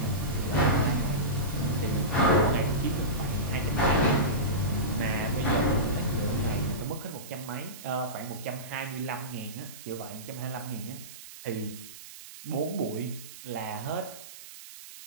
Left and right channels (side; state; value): right; noise; hiss, 15 dB below the sound